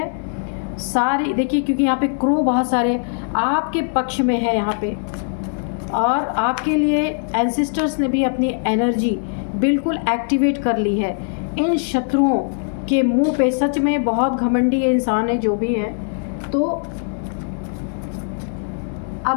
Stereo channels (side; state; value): right; silent; digital silence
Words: सारे देखिए, क्योंकि यहाँ पे क्रो बहुत सारे आपके पक्ष में है यहाँ पे, और आपके लिए एंसेस्टर्स ने भी अपनी एनर्जी बिल्कुल एक्टिवेट कर ली है। इन शत्रुओं के मुंह पे, सच में बहुत घमंडी इंसान है जो भी है, तो